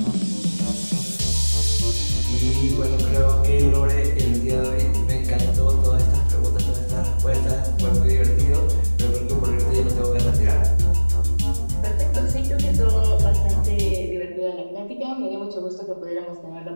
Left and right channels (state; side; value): inverted; both; correlation -1.00